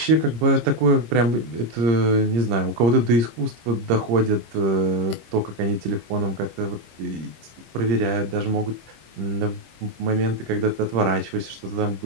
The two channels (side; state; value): left; late; 25 ms